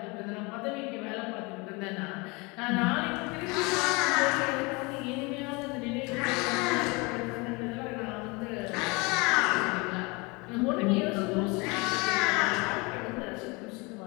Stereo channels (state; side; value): quieter; right; 27.2 dB